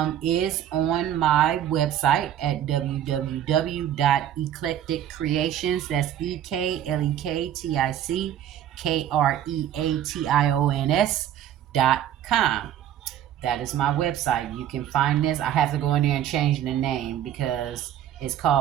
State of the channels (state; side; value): quieter; left; 11.0 dB